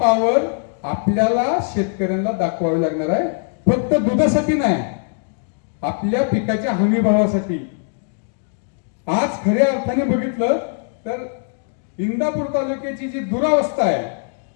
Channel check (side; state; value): right; silent; digital silence